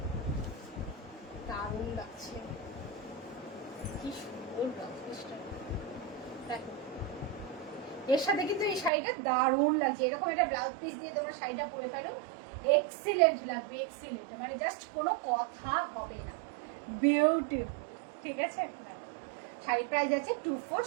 দারুণ লাগছে, কি সুন্দর ব্লাউজ পিসটা, দেখো এর সাথে কিন্তু এই শাড়িটা দারুণ লাগছে, এরকম একটা ব্লাউজ পিস দিয়ে তোমরা শাড়িটা পরে ফেলো, এক্সিলেন্ট লাগবে, এক্সিলেন্ট, মানে জাস্ট কোনো কথা হবে না, বিউটিফুল, ঠিক আছে। শাড়ি প্রাইস আছে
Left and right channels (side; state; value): left; drops out; at 8.9 s